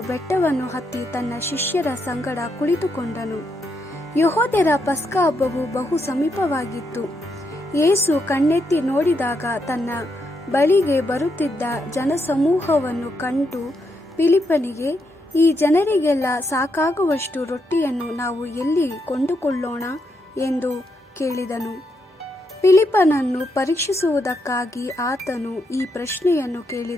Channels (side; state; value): both; normal; correlation 0.80